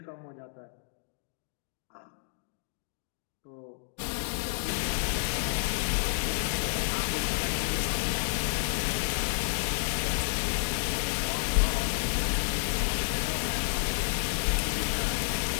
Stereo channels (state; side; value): silent; right; digital silence